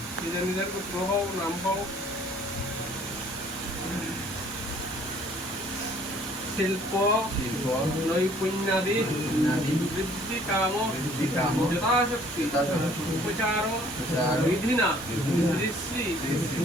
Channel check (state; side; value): normal; both; correlation 0.57